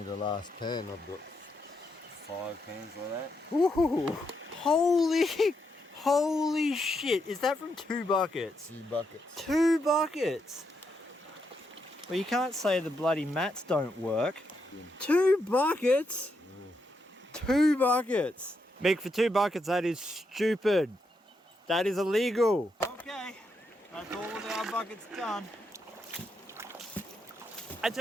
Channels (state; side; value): normal; both; correlation 0.81